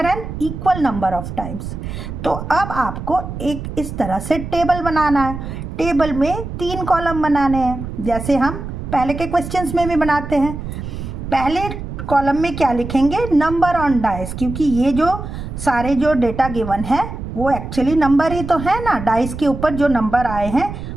an equal number of times. तो अब आपको एक इस तरह से टेबल बनाना है। टेबल में 3 कॉलम बनाने हैं, जैसे हम पहले के क्वेश्चंस में भी बनाते हैं। पहले कॉलम में क्या लिखेंगे? नंबर ऑन डाइस, क्योंकि ये जो सारे जो डेटा गिवन है वो एक्चुअली नंबर ही तो है ना। डाइस के ऊपर जो नंबर आए हैं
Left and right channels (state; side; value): noise; right; rumble, 8 dB below the sound